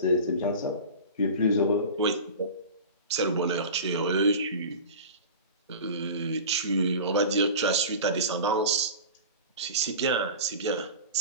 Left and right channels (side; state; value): both; inverted; correlation -0.34